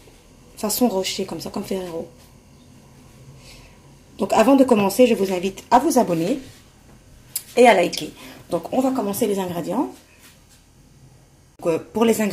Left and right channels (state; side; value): identical; both; correlation 1.00